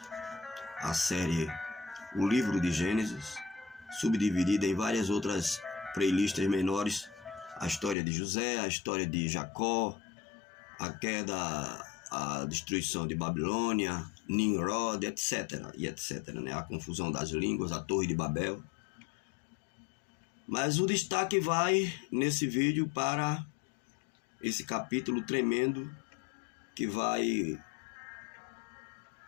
A série O Livro de Gênesis, subdividida em várias outras playlists menores. A história de José, a história de Jacó, a queda, a destruição de Babilônia, Nimrod, etc. E etc. Né? A confusão das línguas, a Torre de Babel. Mas o destaque vai nesse vídeo para esse capítulo tremendo que vai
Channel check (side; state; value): right; drops out; at 8.0 s